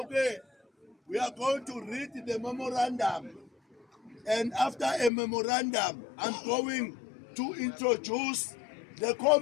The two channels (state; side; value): drops out; right; at 5.1 s